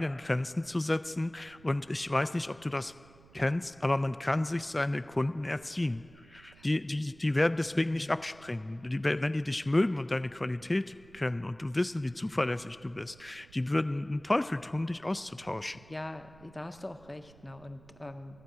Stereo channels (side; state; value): right; noise; rumble, 24 dB below the sound